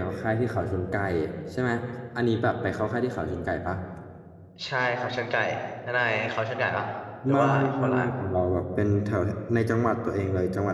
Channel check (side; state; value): both; identical; correlation 1.00